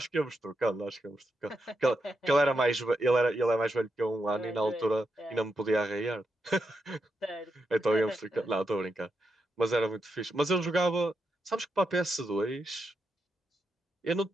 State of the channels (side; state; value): both; normal; correlation 0.84